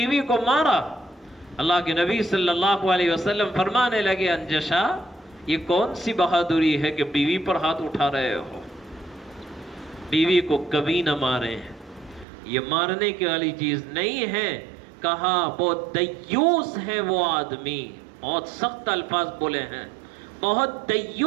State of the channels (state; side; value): drops out; left; at 12.2 s